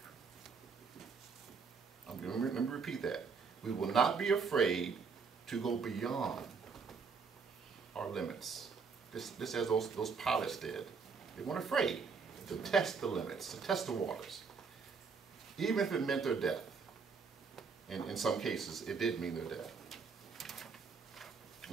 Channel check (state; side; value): quieter; left; 5.3 dB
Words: Let me repeat that. We will not be afraid to go beyond our limits. This as those pilots did. They weren't afraid to test the limits, to test the waters, even if it meant their death. And in some cases, it did mean their death.